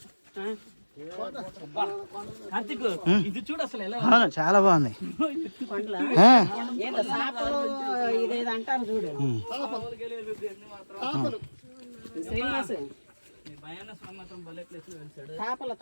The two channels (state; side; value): inverted; both; correlation -1.00